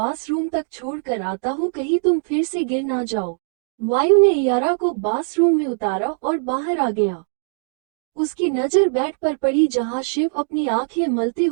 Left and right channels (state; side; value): silent; left; digital silence